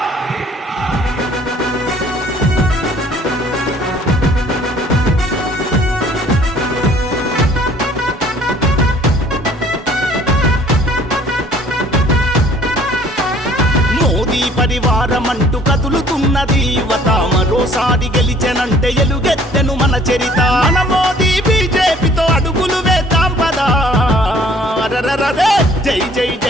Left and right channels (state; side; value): normal; both; correlation 0.56